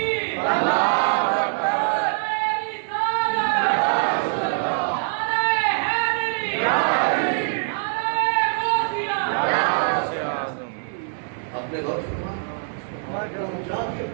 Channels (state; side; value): silent; left; 63 dB below the other